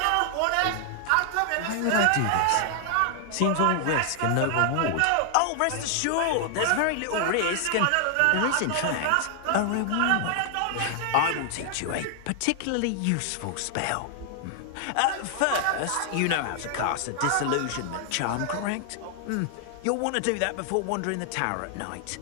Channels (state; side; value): different; both; correlation 0.00